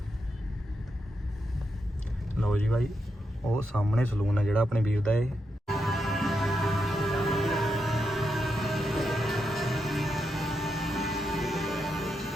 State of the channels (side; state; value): both; normal; correlation 0.84